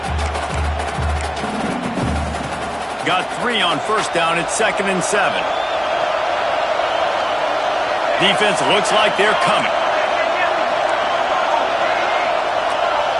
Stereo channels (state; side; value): identical; both; correlation 1.00